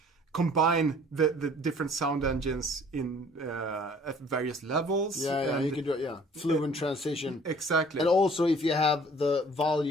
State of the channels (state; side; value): normal; both; correlation 0.53